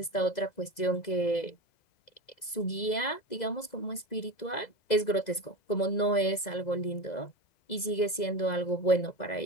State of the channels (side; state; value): right; late; 2.0 ms